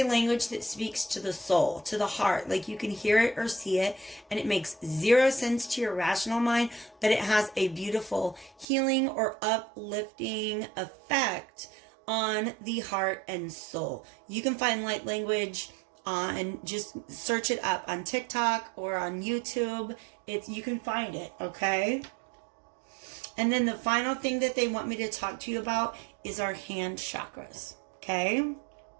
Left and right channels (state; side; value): drops out; left; at 8.7 s